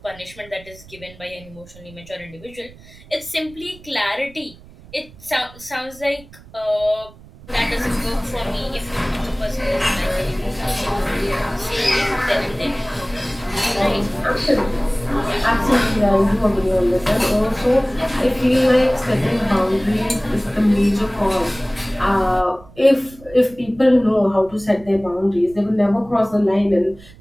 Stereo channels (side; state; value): right; noise; rumble, 22 dB below the sound